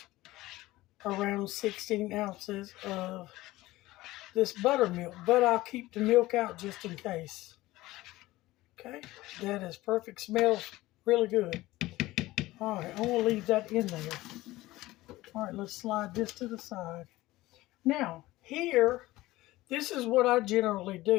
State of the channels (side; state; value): right; quieter; 17.9 dB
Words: around 16 ounces of this buttermilk, but I'll keep the milk out just in case. Okay, that is perfect. Smells really good. All right, I'm going to leave that in there. All right, let's slide this to the side. Now, here, this is what I generally